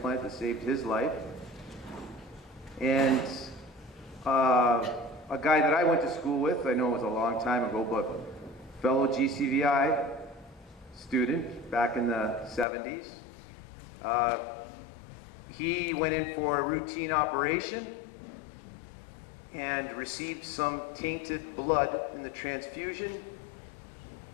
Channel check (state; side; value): drops out; right; at 12.7 s